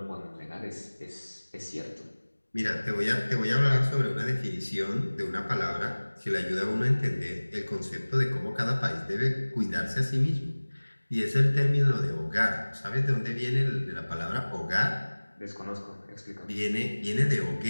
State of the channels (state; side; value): inverted; both; correlation -1.00